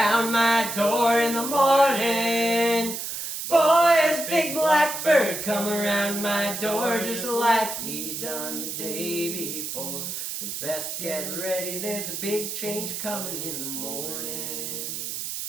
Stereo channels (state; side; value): noise; right; hiss, 5 dB below the sound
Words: my door in the morning. Boys, big black bird come around my door just like he done the day before. Says best get ready, there's a big change coming in the morning.